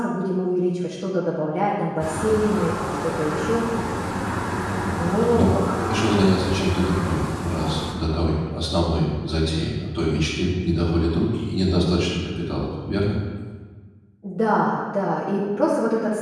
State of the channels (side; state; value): both; identical; correlation 1.00